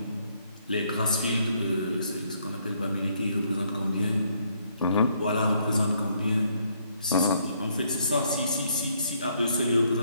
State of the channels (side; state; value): both; inverted; correlation -0.70